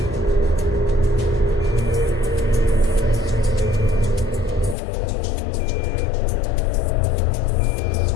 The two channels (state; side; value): drops out; right; at 4.8 s